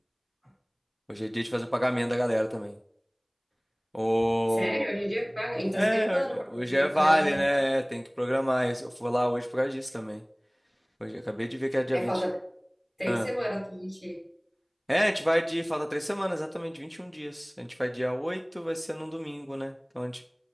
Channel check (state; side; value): identical; both; correlation 1.00